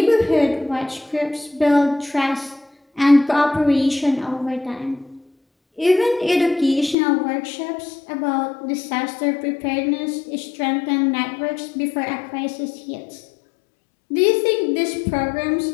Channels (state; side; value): drops out; right; at 7.0 s